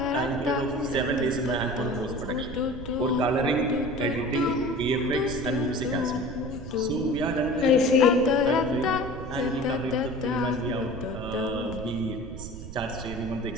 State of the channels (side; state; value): right; noise; rumble, 11 dB below the sound